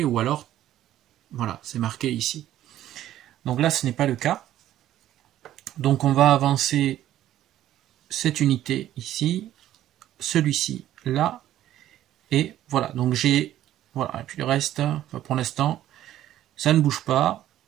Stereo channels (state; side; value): quieter; left; 12.7 dB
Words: ou alors, voilà, c'est marqué ici. Donc là ce n'est pas le cas. Donc on va avancer cette unité ici, celui-ci là, et voilà, donc j'ai, voilà, et puis le reste, pour l'instant, ça ne bouge pas.